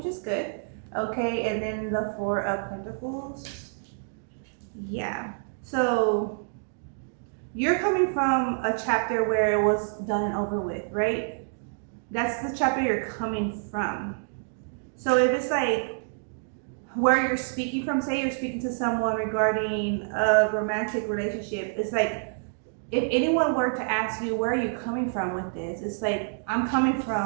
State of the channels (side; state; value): left; silent; digital silence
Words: is good. Okay, and then the 4 of Pentacles. Yeah. So you're coming from a chapter where it was done and over with, right? That's the chapter you're coming from. So if it's like where you're speaking from, say you're speaking to someone regarding a romantic relationship, it's like, if anyone were to ask you, where are you coming from with this? It's like, I'm coming